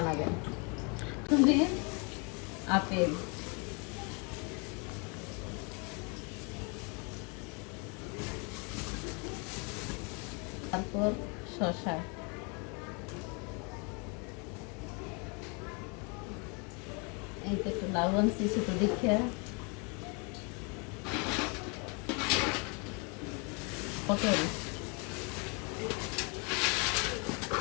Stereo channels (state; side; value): quieter; right; 33.3 dB